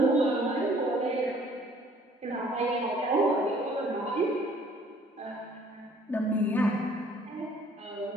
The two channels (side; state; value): both; normal; correlation 0.58